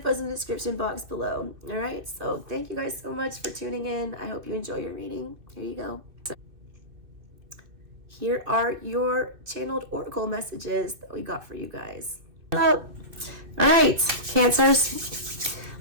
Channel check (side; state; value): left; late; 2.6 ms